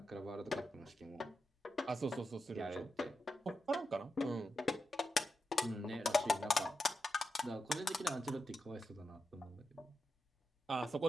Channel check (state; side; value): normal; both; correlation 0.88